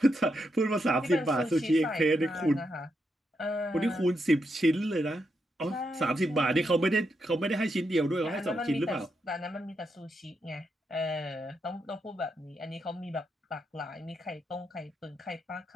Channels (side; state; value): both; normal; correlation 0.82